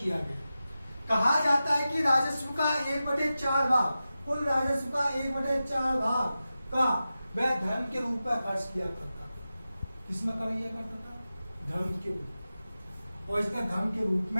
गया। कहा जाता है कि राजस्व का 1/4 भाग, कुल राजस्व का 1/4 भाग का वह धर्म के रूप में खर्च किया करता था। किसमें किया करता था? धर्म के रूप, और इसने धर्म के रूप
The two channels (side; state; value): both; inverted; correlation -0.93